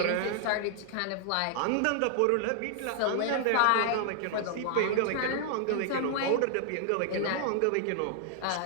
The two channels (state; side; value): different; both; correlation 0.00